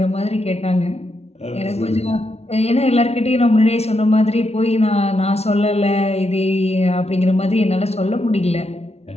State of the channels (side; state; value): right; late; 0.31 ms